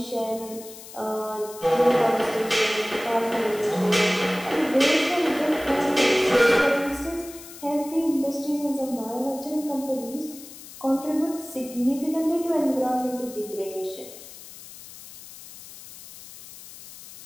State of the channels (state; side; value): noise; left; hiss, 16 dB below the sound